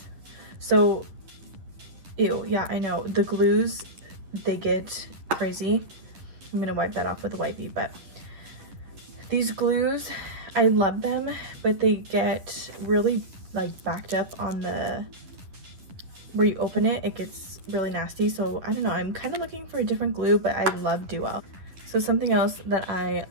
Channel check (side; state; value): left; late; 10 ms